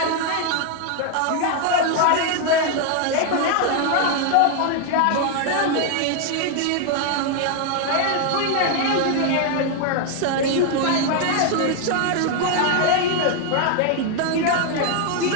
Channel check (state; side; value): different; both; correlation 0.01